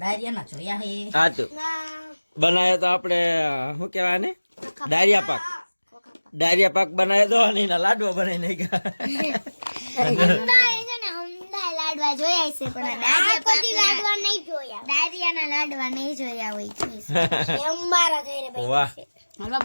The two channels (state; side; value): inverted; both; correlation -1.00